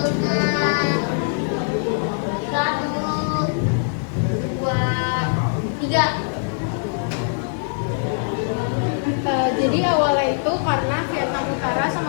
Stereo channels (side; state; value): right; silent; digital silence